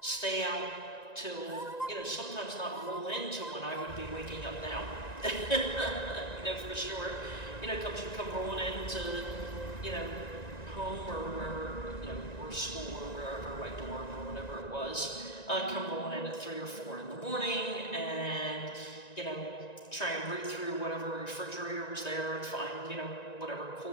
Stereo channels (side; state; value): right; late; 1.9 ms